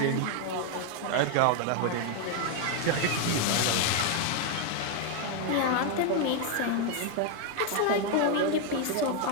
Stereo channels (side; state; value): both; different; correlation 0.00